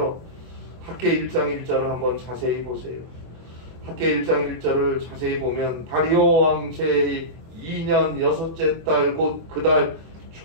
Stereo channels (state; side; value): late; left; 24 ms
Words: 학개 1장 1절을 한번 자세히 보세요. 학개 1장 1절을 자세히 보면 다리오 왕 제2년 6째 달 곧 그 달